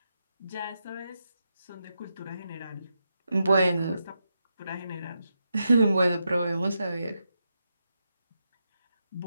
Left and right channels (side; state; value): both; inverted; correlation -0.86